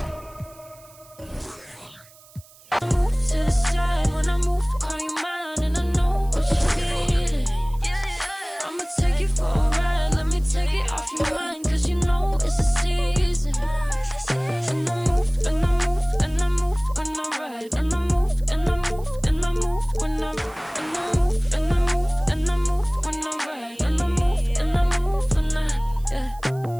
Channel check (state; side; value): noise; right; hiss, 25 dB below the sound